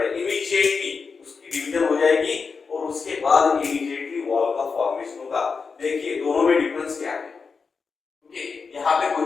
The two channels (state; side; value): quieter; right; 5.1 dB